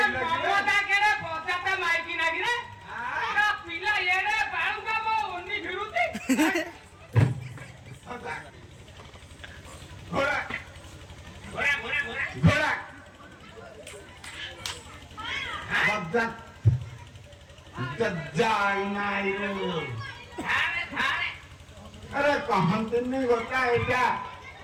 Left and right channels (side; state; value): both; identical; correlation 1.00